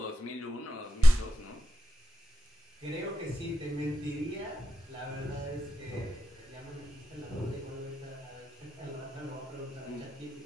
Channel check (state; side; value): normal; both; correlation 0.88